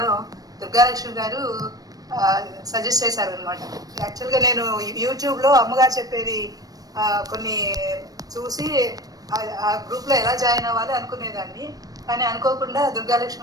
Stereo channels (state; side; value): late; left; 0.18 ms